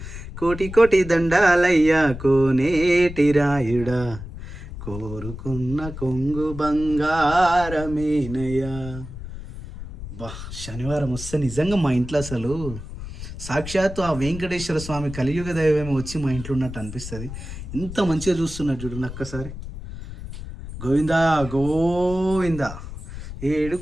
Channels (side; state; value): left; noise; rumble, 11 dB below the sound